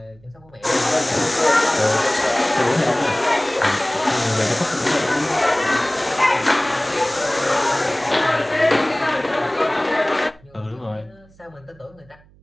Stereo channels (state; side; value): noise; right; hum, 28 dB below the sound